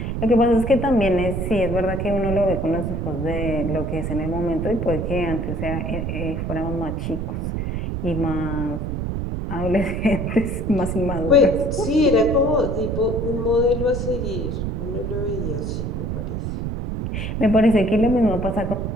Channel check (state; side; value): noise; right; rumble, 3 dB below the sound